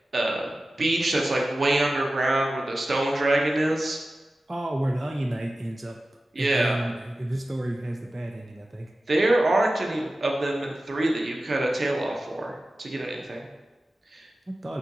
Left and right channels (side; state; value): both; normal; correlation 0.95